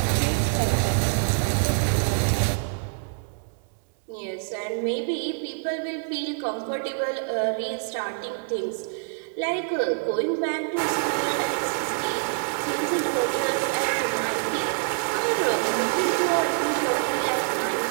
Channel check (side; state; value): left; silent; digital silence